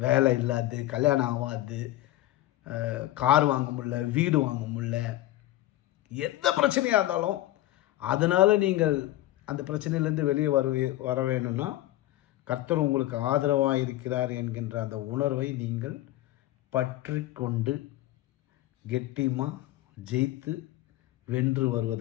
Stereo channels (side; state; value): right; quieter; 15.5 dB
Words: வேலை இல்லாது, கல்யாணம் ஆகாது, கார் வாங்க முடியல, வீடு வாங்க முடியல, எந்த பிரச்சனையாக இருந்தாலும் அதனால் நீங்கள் அந்த பிரச்சனையிலேருந்து வெளியே வர வேணும்னா கர்த்தர் உங்களுக்கு ஆதரவாக இருக்கிறார் என்கின்ற அந்த உணர்வை நீங்கள் பற்றி கொண்டு கெட்டியமாக ஜெயித்து வென்று